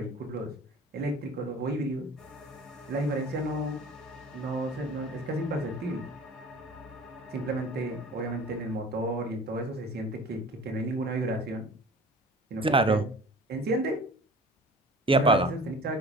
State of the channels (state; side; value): normal; both; correlation 0.43